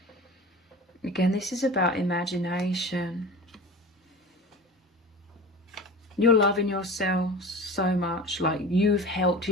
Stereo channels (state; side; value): normal; both; correlation 0.34